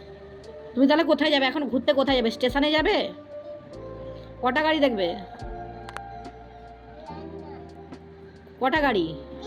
তুমি তাহলে কোথায় যাবে এখন? ঘুরতে কোথায় যাবে? স্টেশনে যাবে? কটা গাড়ি দেখবে? কটা গাড়ি?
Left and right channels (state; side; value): identical; both; correlation 1.00